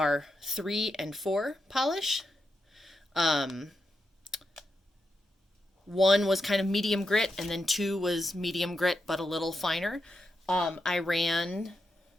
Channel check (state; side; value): normal; both; correlation 0.86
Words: 3 and 4 polish. Um, 1 was kind of medium grit, and then 2 was medium grit but a little finer. I ran,